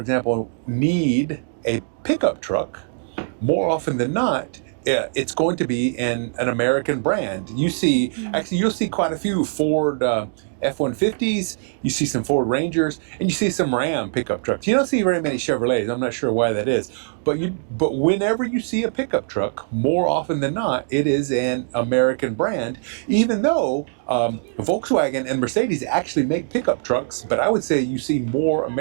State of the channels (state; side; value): silent; left; digital silence